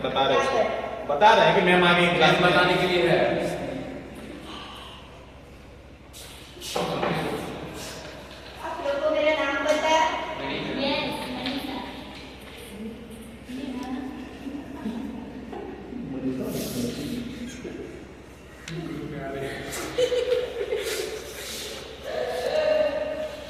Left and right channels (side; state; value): both; identical; correlation 1.00